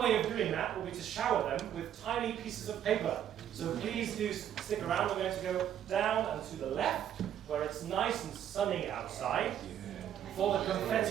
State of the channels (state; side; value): quieter; left; 10.2 dB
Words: way of doing that will be to shower them with tiny pieces of paper. So please do stick around. We're going to go down and to the left, where it's nice and sunny outside, for the